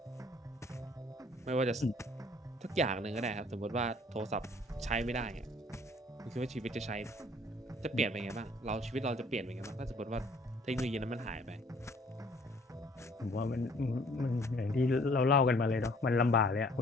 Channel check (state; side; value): normal; both; correlation 0.58